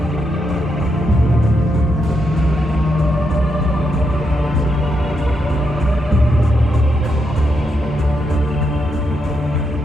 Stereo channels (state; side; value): normal; both; correlation 0.81